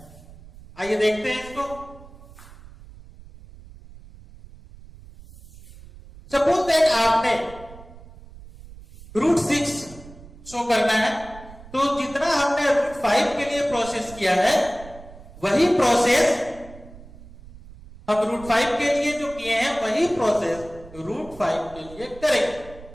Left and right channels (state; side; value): noise; right; rumble, 19 dB below the sound